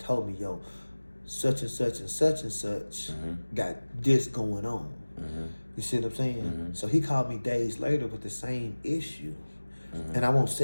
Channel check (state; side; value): inverted; both; correlation -1.00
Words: me, yo, such and such and such and such got this going on. You see what I'm saying? So he called me days later with the same issue. And I won't